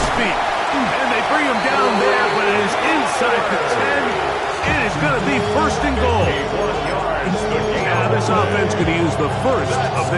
feet. And they bring him down there, but it is inside the 10. It is going to be 1st and goal. Now this offense going to use the first of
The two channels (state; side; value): identical; both; correlation 1.00